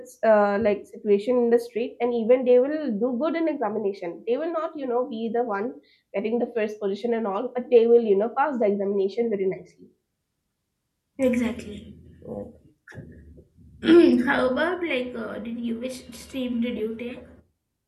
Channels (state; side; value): identical; both; correlation 1.00